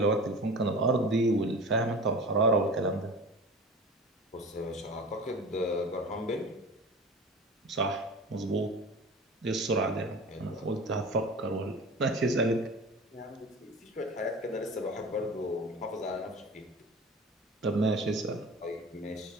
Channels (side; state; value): both; normal; correlation 0.36